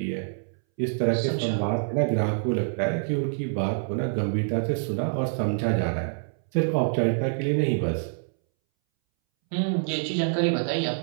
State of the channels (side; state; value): left; silent; 61 dB below the other